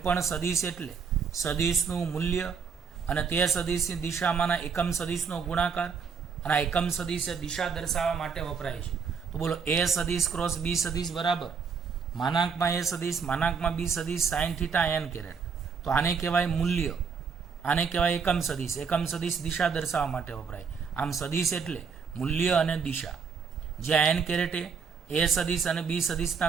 સદિશ એટલે સદિશનું મૂલ્ય અને તે સદિશની દિશામાંના એકમ સદિશનો ગુણાકાર, અને આ એકમ સદિશ દિશા દર્શાવવા માટે વપરાય છે. તો બોલો, એ સદિશ ક્રોસ બી સદિશ બરાબર માનાંકમાં એ સદિશ માનાંકમાં બી સદિશ સાઇન થીટા n કેરેટ. તો આને કહેવાય મૂલ્ય, આને કહેવાય એકમ સદિશ. એકમ સદિશ દિશા દર્શાવવા માટે વપરાય. આમ સદિશ એટલે મૂલ્ય અને દિશા. જ્યાં n કેરેટ એ સદિશ અને બી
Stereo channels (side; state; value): left; quieter; 5.9 dB